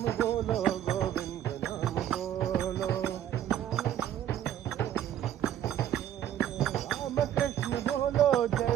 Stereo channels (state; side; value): quieter; left; 11.0 dB